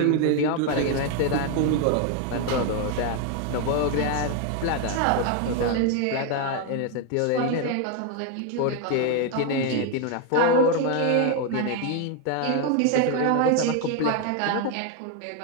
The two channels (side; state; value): both; different; correlation 0.01